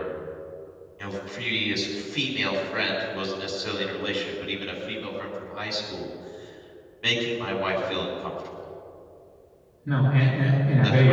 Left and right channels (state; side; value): identical; both; correlation 1.00